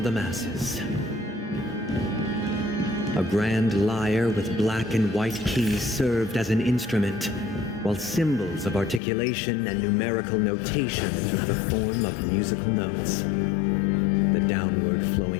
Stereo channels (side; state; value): right; drops out; at 9.0 s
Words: the masses. A grand lyre with black and white keys served as an instrument, while symbols of articulation and numerical notation took the form of musical notes. The downward